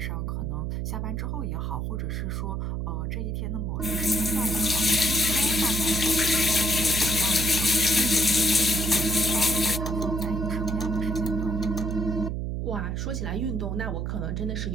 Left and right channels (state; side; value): noise; right; hum, 2 dB below the sound